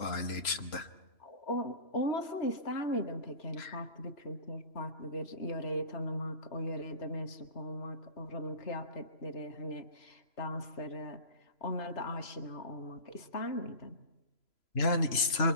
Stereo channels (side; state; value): right; late; 3.0 ms